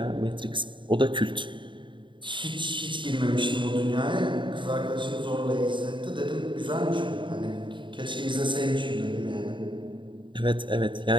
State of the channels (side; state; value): left; late; 0.23 ms